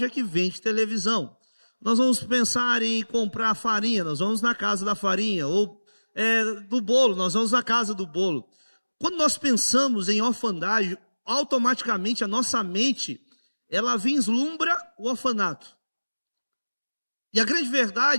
que vende televisão. Nós vamos pensar em comprar farinha, nós vamos na casa da farinha, ou do bolo, nós vamos na casa do bolo. Quando nós pensamos em orfandade, automaticamente a nossa mente, ela vislumbra o orfanato. E a grande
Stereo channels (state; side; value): inverted; both; correlation -1.00